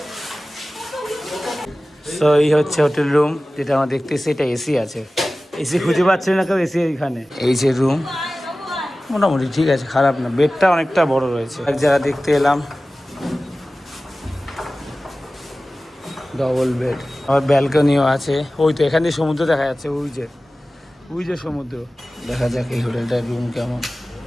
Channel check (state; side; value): normal; both; correlation 0.96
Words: তো এই হচ্ছে হোটেল রুম, যেটা আমরা দেখতেছি। এটা এসি আছে, এসি খুঁজে পাচ্ছে না কেউ, এসি এইখানে। এই যে রুম, মোটামুটি ঠিক আছে, খারাপ না। বেডটা অনেকটা বড় রয়েছে। এক জায়গা দেখতে এলাম ডবল বেড, আবার ব্যালকনিও আছে। ওই তো এখান দিয়ে সমুদ্র দেখা যাচ্ছে, ওই যে সমুদ্র। দেখা যাক এই হোটেলটার রুম কেমন।